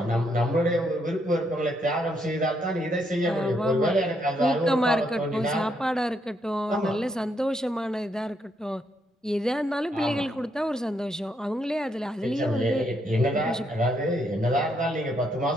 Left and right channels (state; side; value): normal; both; correlation 0.76